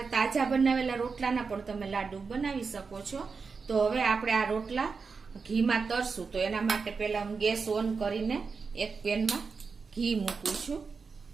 તાજા બનાવેલા રોટલાના પણ તમે લાડુ બનાવી શકો છો। તો હવે આપણે આ રોટલા ઘીમાં તરશું। તો એના માટે પહેલા હું ગેસ ઓન કરીને એક પેનમાં ઘી મૂકું છું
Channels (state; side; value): quieter; left; 5.0 dB